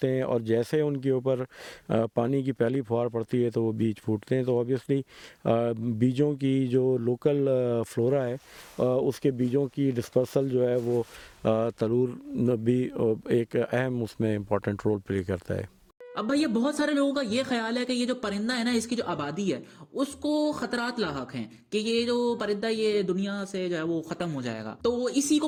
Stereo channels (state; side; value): identical; both; correlation 1.00